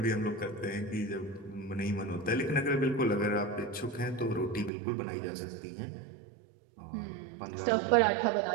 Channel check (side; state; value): left; drops out; at 4.7 s